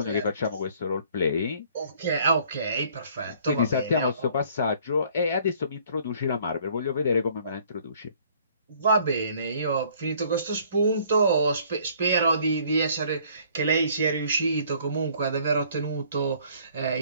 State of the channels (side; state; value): both; inverted; correlation -0.58